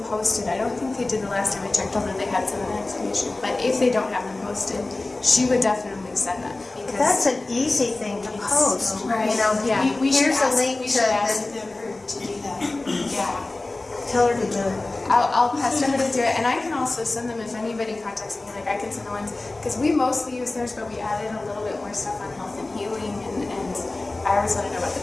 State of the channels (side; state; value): right; quieter; 3.1 dB